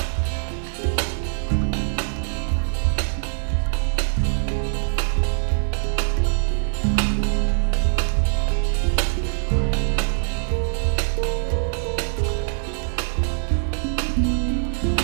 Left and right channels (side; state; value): left; silent; 64 dB below the other